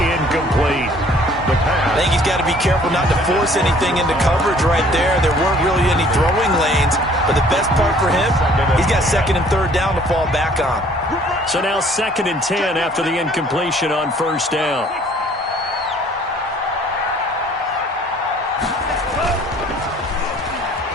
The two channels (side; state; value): both; normal; correlation 0.56